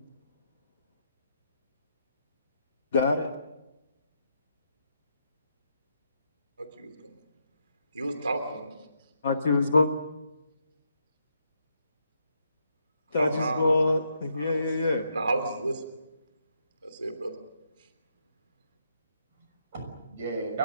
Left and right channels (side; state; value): both; inverted; correlation -0.78